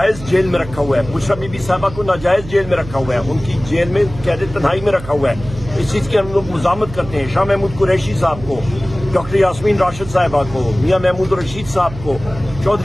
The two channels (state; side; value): noise; right; hum, 14 dB below the sound